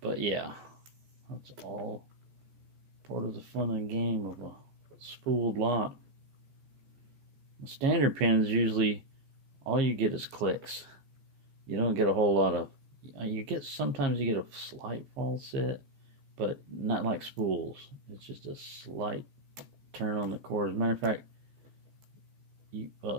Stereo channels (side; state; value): left; late; 15 ms